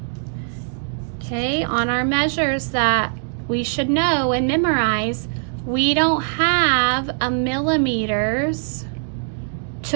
Okay, on our measures that we should know and memorize, we don't have a millimeters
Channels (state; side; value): silent; left; digital silence